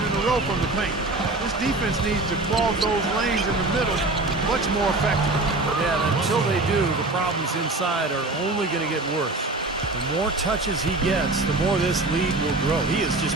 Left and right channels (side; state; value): left; quieter; 3.0 dB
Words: a row from the paint. This defense needs to clog those lanes in the middle much more effectively. Yeah, and until they do, the problems inside are only going to get worse. The more touches he gets, the more this lead will grow. He has just